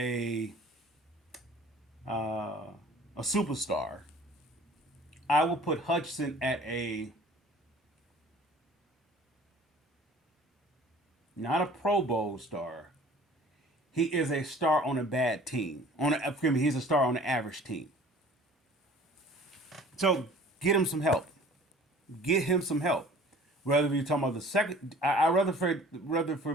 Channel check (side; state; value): both; normal; correlation 0.48